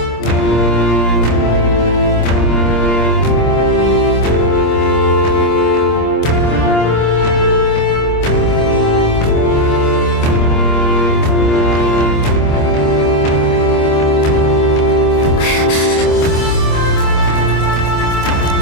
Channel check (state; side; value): late; right; 26 ms